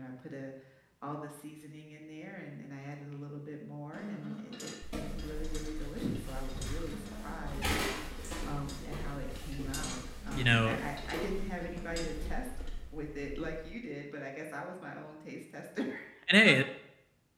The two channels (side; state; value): both; identical; correlation 1.00